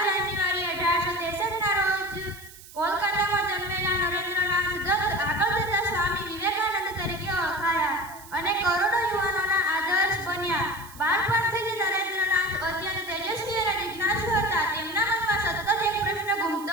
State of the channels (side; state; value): right; noise; hiss, 19 dB below the sound